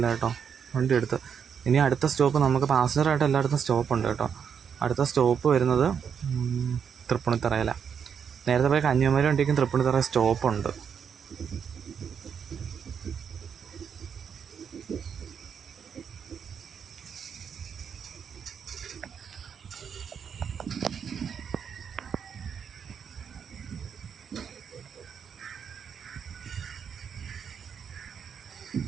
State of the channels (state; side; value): quieter; left; 7.3 dB